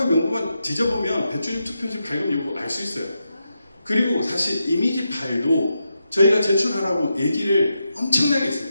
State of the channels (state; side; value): inverted; both; correlation -0.86